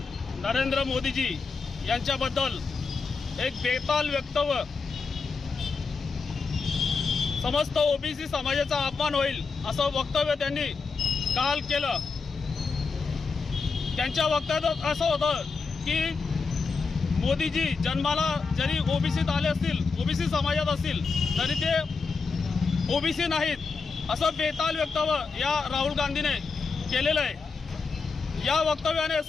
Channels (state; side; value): quieter; right; 4.7 dB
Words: नरेंद्र मोदीजी यांच्याबद्दल एक बेताल वक्तव्य, समस्त ओबीसी समाजाचा अपमान होईल असं वक्तव्य त्यांनी काल केलं। त्यांच्या वक्तव्यात असं होतं की मोदीजी जन्माला जरी ओबीसीत आले असतील, ओबीसी समाजात असतील, तरी ते ओबीसी नाहीत असं बेताल वक्तव्य या राहुल गांधीने केलेलं आहे। या वक्तव्याने